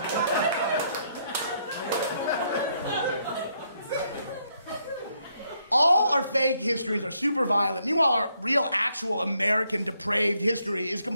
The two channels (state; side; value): inverted; both; correlation -0.74